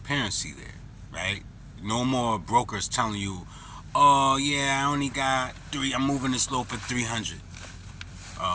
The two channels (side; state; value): both; identical; correlation 1.00